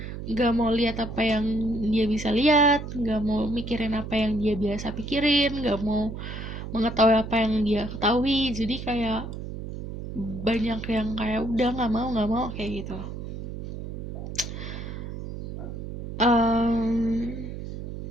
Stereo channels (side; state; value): right; noise; hum, 8 dB below the sound